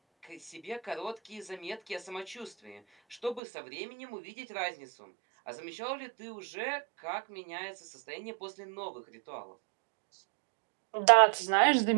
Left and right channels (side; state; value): left; drops out; at 3.4 s